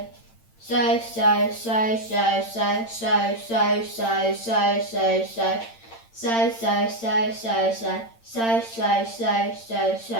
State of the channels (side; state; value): right; late; 8.8 ms